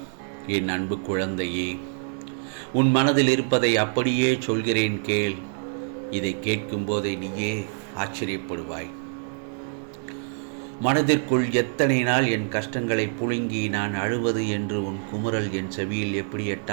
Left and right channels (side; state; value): left; silent; digital silence